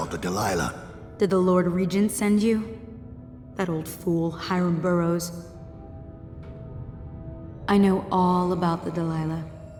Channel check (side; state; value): both; identical; correlation 1.00